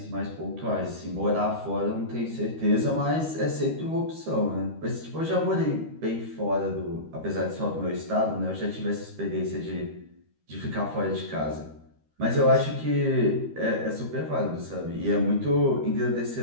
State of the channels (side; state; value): left; late; 13 ms